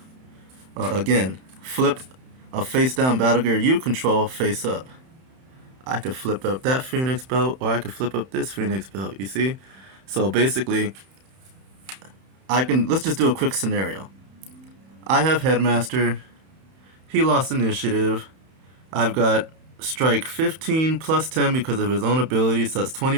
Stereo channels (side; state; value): left; late; 31 ms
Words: Again, flip a face down battle gear you control face up. I could flip up that Phoenix belt, or I could flip up this Phoenix belt, you see? So basically, let's just do a quick scenario. I have Headmaster, he lost initiative, I've got strike 15 plus 10 because of his own ability, so that's